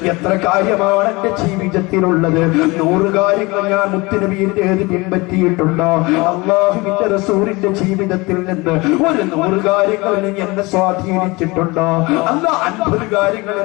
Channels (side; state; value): right; quieter; 24.0 dB